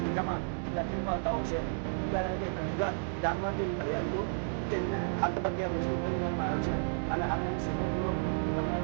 干嘛？要经过道歉，在那个人，然后就很多这看到别人说可以买钱，俺还没什么说，我们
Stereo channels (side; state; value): left; silent; digital silence